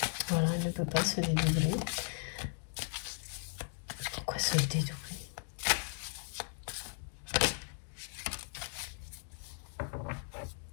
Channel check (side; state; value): right; silent; 53 dB below the other